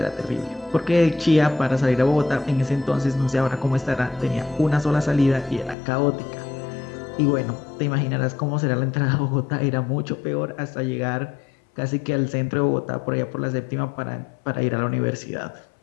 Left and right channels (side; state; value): right; drops out; at 5.8 s